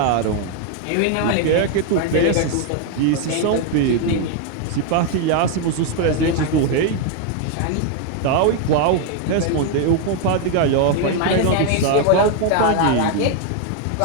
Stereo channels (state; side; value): different; both; correlation 0.00